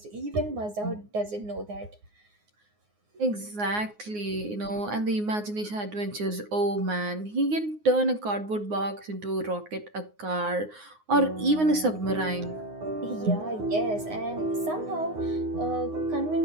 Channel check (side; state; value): left; late; 9.6 ms